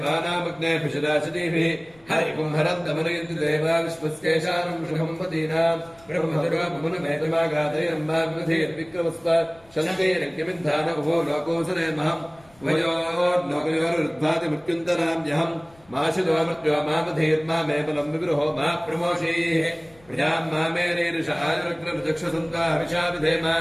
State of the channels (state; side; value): noise; left; rumble, 29 dB below the sound